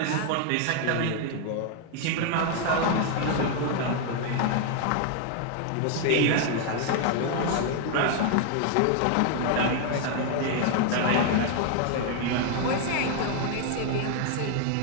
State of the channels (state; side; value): different; both; correlation 0.00